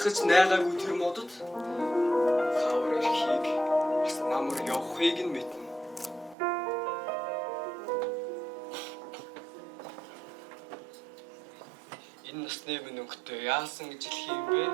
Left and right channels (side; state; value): left; drops out; at 6.4 s